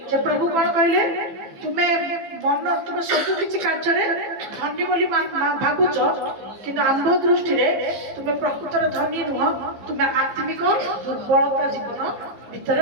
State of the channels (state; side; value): late; left; 15 ms